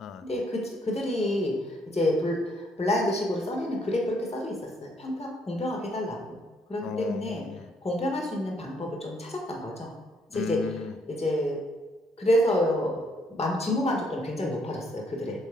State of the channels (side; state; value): both; normal; correlation 0.70